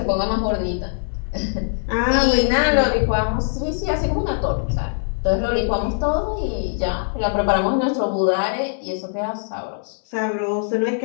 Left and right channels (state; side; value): silent; right; digital silence